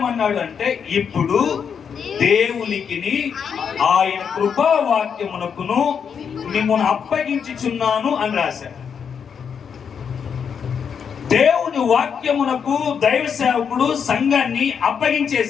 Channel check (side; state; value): right; quieter; 7.0 dB